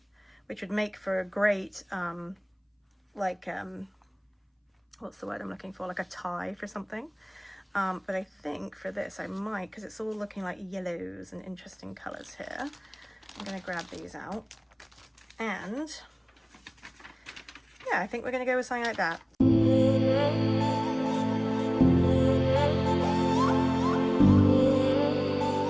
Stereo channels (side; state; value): both; identical; correlation 1.00